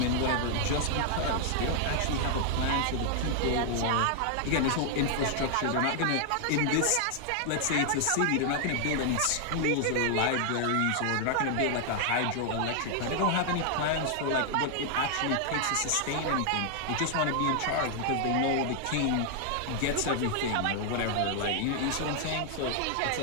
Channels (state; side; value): different; both; correlation 0.00